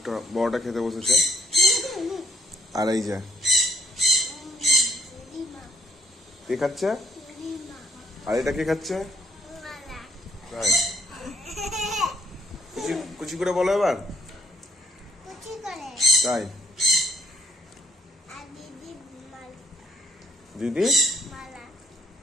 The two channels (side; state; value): both; normal; correlation 0.68